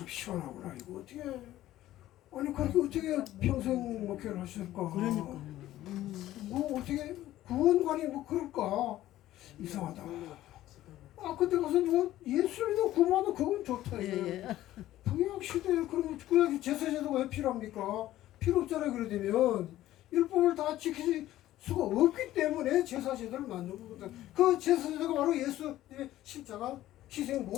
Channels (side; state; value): right; quieter; 14.4 dB